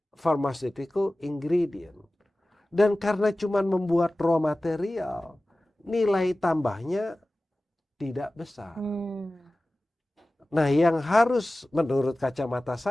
pharmaceutical ingredient. Dan karena cuma membuat raw material, nilai tambahnya tidak besar. Nah, yang harus menurut kacamata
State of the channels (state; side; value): normal; both; correlation 0.97